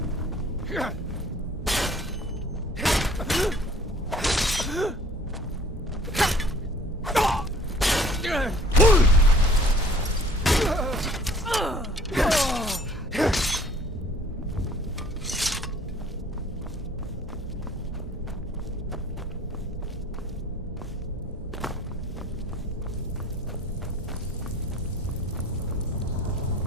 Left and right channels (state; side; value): normal; both; correlation 0.53